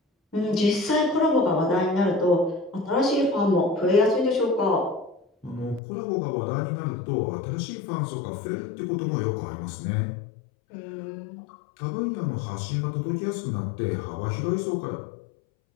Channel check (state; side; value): drops out; right; at 5.8 s